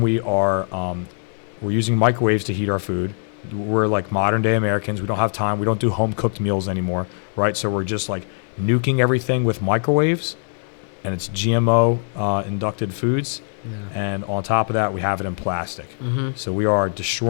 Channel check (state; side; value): silent; right; 64 dB below the other